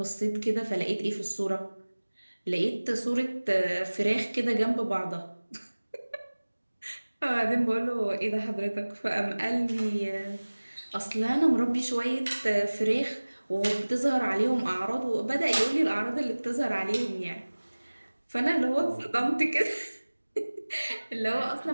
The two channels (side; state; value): both; inverted; correlation -1.00